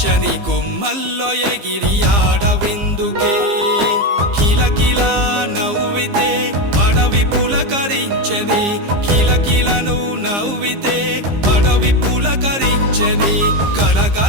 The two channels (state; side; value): late; left; 15 ms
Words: కొమ్మల్లో ఎగిరి ఆడవిందుకే కిలకిలా నవ్వితే అడవి పులకరించని కిలకిలను నవ్వితే అడవి పులకరించని